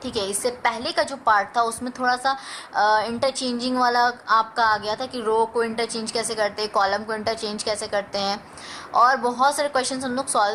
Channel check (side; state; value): both; identical; correlation 1.00